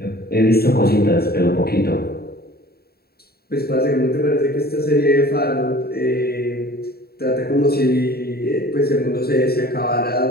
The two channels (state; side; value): late; right; 0.45 ms